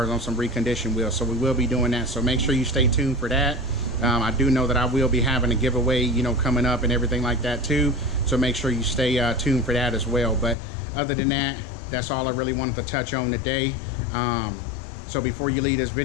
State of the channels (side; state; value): right; drops out; at 10.6 s